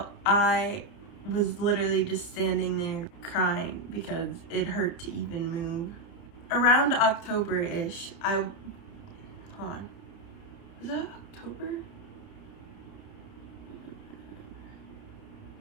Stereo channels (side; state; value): right; late; 30 ms